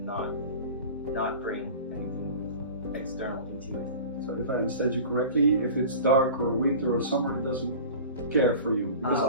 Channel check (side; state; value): both; inverted; correlation -0.38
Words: not bring anything external into it. So if I understand you correctly, if it's dark or winter or summer, it doesn't care for you. Because